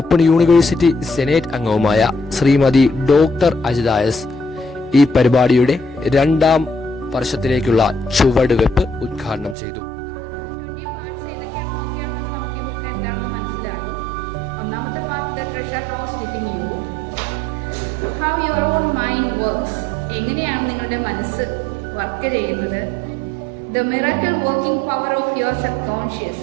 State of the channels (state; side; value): drops out; left; at 9.6 s